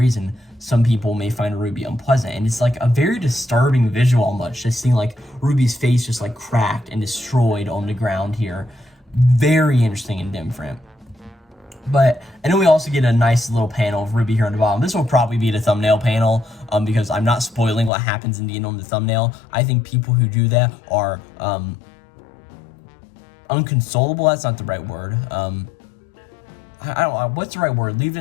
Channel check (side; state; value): right; drops out; at 17.9 s